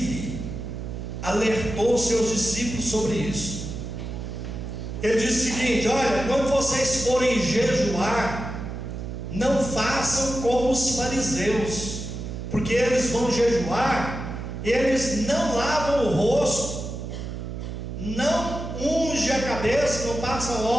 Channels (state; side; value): noise; right; hum, 7 dB below the sound